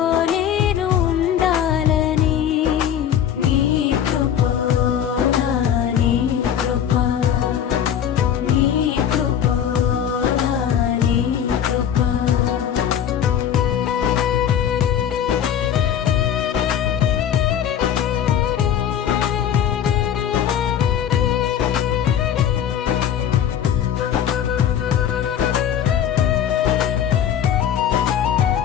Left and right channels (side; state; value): right; quieter; 9.4 dB